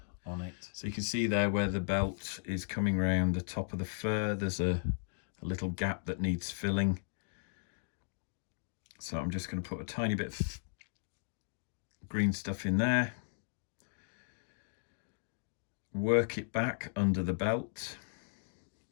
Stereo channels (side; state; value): right; silent; digital silence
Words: on it. So you can see there where the belt is coming around the top of the fur, there's a little gap that needs filling. So I'm just going to put a tiny bit of green stuff in there. Work it back under the belt.